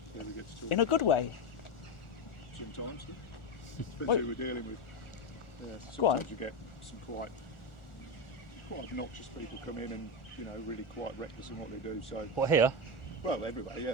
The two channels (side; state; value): right; late; 1.4 ms